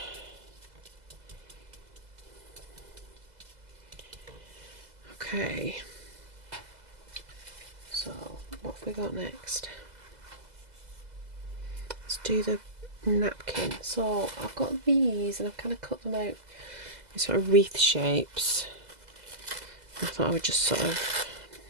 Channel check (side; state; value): left; late; 2.0 ms